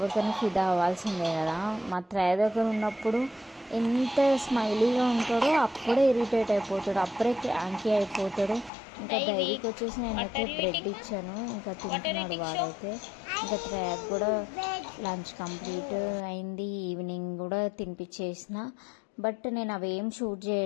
ఫిదా అవ్వాల్సిందే కదా. మా త్రయ దగ్గర ఉన్నప్పుడు ఎంత స్మైలీగా ఉంటాడో అప్పుడే ఇరిటేట్ అయిపోతాడు, అప్పుడే క్రాంకీ అయిపోతాడు. ఇంకా డైరీకి వచ్చేసి నేనైతే బ్రెడ్ ఇచ్చాను, ఇంకా తింటున్నాడు వాడైతే. ఇంకా త్రయాకి కూడా లంచ్ కంప్లీట్ అయింది, ఈవినింగ్ కూడా తినిపించేసిన. బట్ నేను అవేం షూట్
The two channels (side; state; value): right; drops out; at 8.7 s